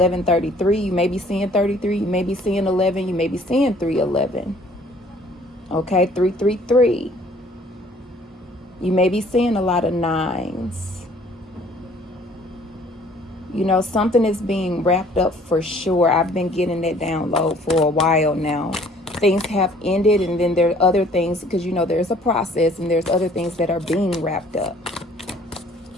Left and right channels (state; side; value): normal; both; correlation 0.57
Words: You may be seeing 33. You may be seeing 11. You may be seeing 311. Okay, 333. You may be seeing a lot of nines. Something is being wrapped up for sure. I've been getting that download for a while now. Things have ended, and then there are other things, because there's a process, and there's other things that are being wrapped up.